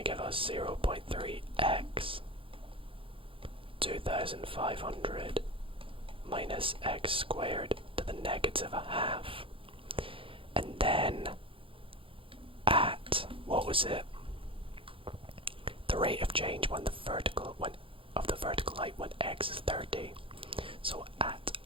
give us 0.3x 2500 minus x squared to the negative a half. And then at, what was it? The rate of change of the vertical height when x is 30. So at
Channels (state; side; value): late; left; 0.26 ms